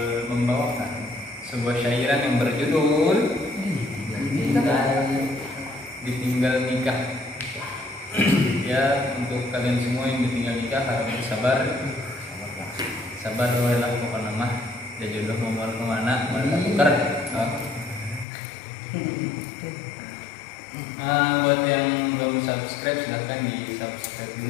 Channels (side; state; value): right; drops out; at 18.2 s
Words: membawakan sebuah syairan yang berjudul Ditinggal Nikah. Ya, untuk kalian semua yang ditinggal nikah harus sabar. Sabar lah pokoknya mah. Ya jodoh mau kemana tukar. Buat yang belum subscribe silahkan di subscribe